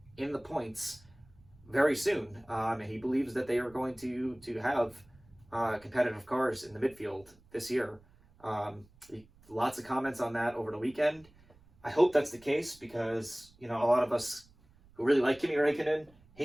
in the points very soon. And he believes that they are going to have competitive cars in the midfield this year. Lots of comments on that over the weekend. I hope that's the case because, a lot of us who really like Kimi Raikkonen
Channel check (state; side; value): noise; right; rumble, 28 dB below the sound